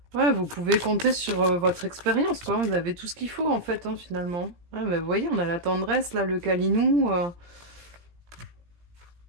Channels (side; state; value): left; late; 17 ms